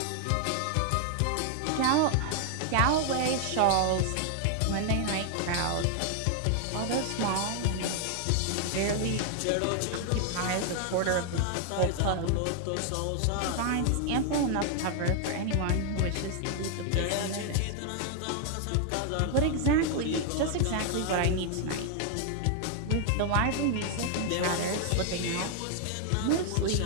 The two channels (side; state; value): both; different; correlation 0.00